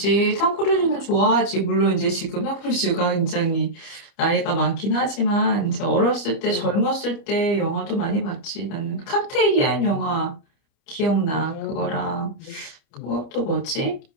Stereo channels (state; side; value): late; right; 29 ms